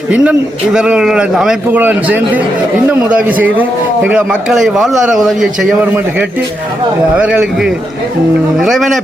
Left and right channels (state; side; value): normal; both; correlation 0.83